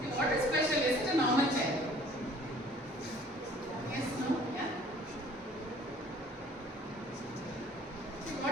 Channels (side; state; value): both; normal; correlation 0.53